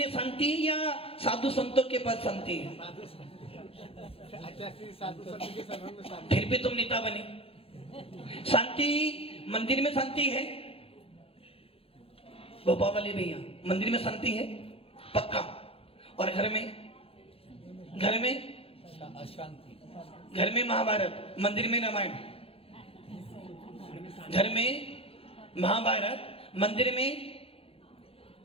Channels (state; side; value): late; right; 0.27 ms